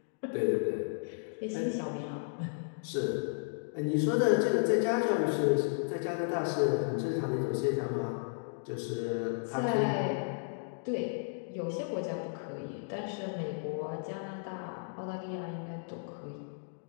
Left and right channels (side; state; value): right; silent; digital silence